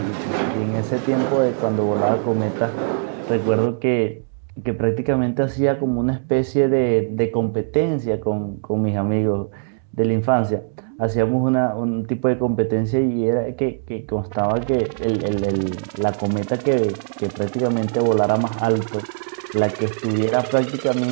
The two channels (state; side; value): silent; left; digital silence